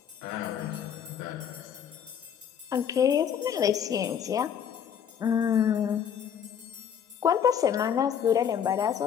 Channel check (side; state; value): right; quieter; 8.3 dB